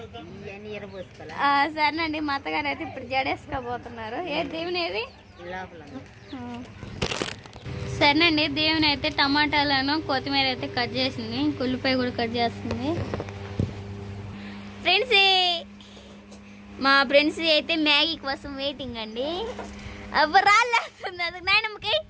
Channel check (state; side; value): identical; both; correlation 1.00